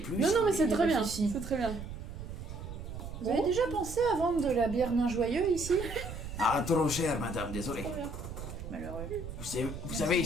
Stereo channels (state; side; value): noise; right; rumble, 9 dB below the sound